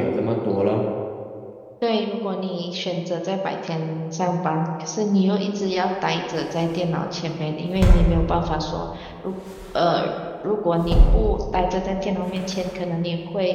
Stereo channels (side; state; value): both; identical; correlation 1.00